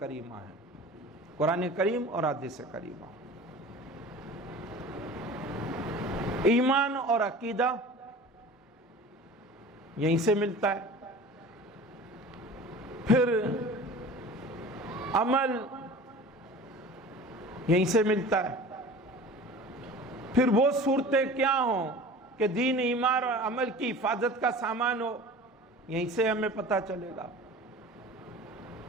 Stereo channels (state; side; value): normal; both; correlation 0.40